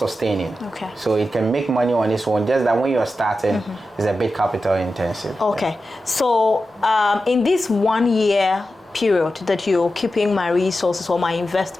Okay. So it can make money on its own, just that when you're starting, it's a bit capital intensive. Okay. So in this 1 year period that you're keeping my resources or my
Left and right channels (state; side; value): normal; both; correlation 0.92